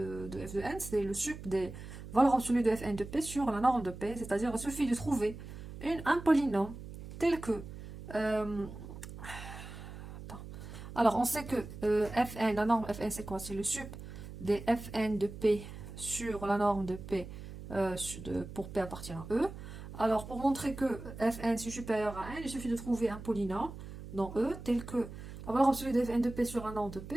f de n, c'est le sup des valeurs absolues de fn de p sur la norme de p. C'est-à-dire, il suffit de trouver un polynôme tel que... alors, on sait que fn, la norme fn, c'est quoi? C'est le sup des fn de p sur la norme de P pour P appartient à E. Alors, pour montrer que Fn est supérieur à n, il suffit de trouver un polynôme dans E tel que la valeur absolue de Fn de P sur la norme de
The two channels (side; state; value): right; noise; hum, 12 dB below the sound